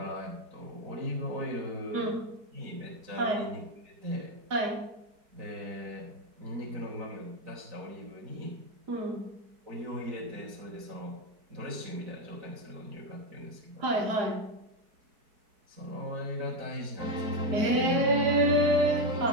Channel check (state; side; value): late; left; 4.6 ms